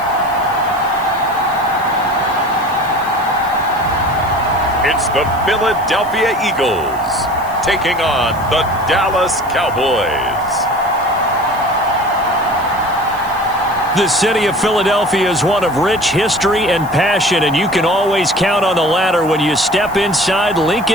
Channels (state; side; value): noise; right; hiss, 21 dB below the sound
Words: It's the Philadelphia Eagles taking on the Dallas Cowboys. The city of Philadelphia is one of rich history and passion, and you can always count on the latter when you step inside